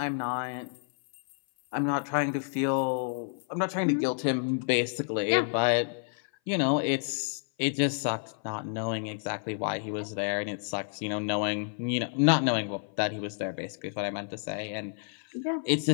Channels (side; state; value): right; silent; 56 dB below the other